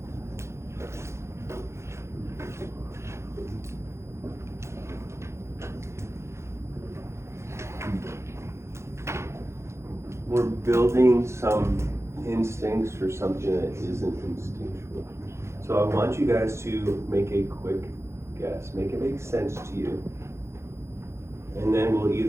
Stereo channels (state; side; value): late; left; 0.13 ms